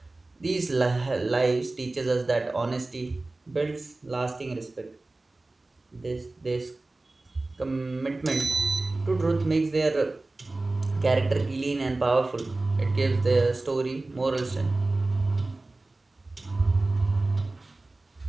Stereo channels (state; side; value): quieter; left; 3.1 dB